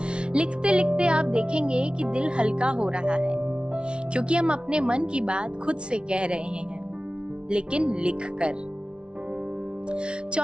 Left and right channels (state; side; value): late; left; 0.057 ms